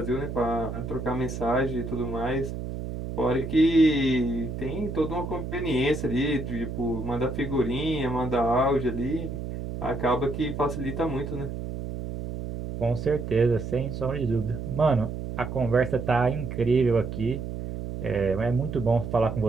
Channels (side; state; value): right; noise; hum, 6 dB below the sound